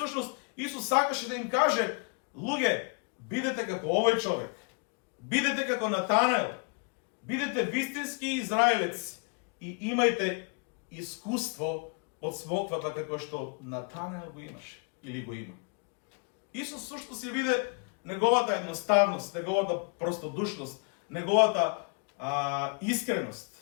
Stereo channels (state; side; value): quieter; right; 38.1 dB